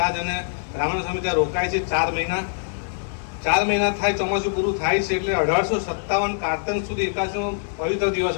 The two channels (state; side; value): silent; right; digital silence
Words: અને રામાનંદ સ્વામી ત્યાં રોકાય છે. 4 મહિના થાય, ચોમાસું પૂરું થાય છે એટલે 1857 કારતન સુધી એકાદશીનો પવિત્ર દિવસ